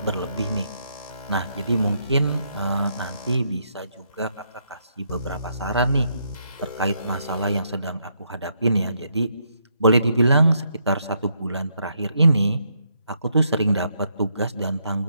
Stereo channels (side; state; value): both; inverted; correlation -0.76